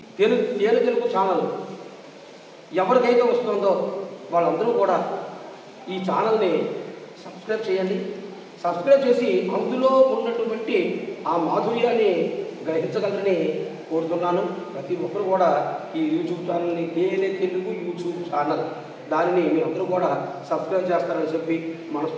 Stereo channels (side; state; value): both; identical; correlation 1.00